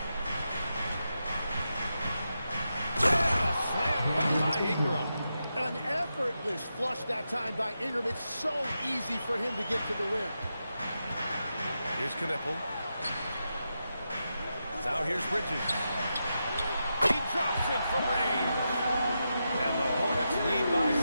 Yeah, slam dunk by Ingram. An effortless flush that time by Ingram. It's so easy for him to get to the rim. Here's Knippel. Now here's Bridges. He drops it from range. And the Hornets lead by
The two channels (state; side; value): inverted; both; correlation -0.88